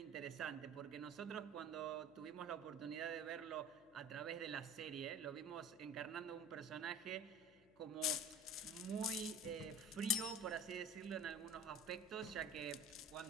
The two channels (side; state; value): left; noise; hum, 27 dB below the sound